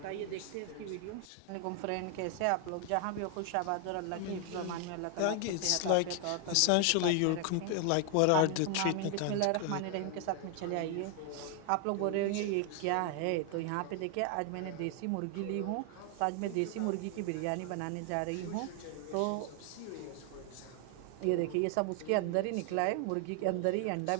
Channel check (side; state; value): both; different; correlation 0.00